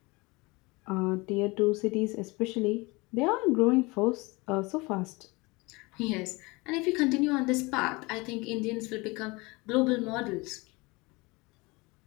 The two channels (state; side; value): quieter; right; 24.6 dB